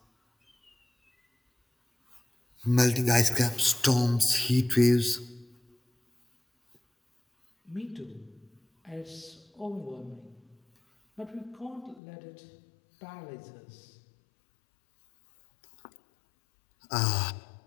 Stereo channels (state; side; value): drops out; right; at 12.0 s